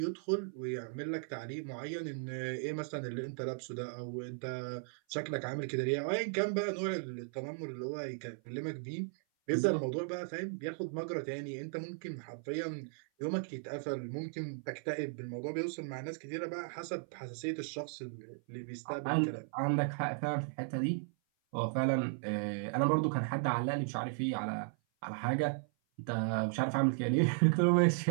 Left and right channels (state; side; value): silent; left; 54 dB below the other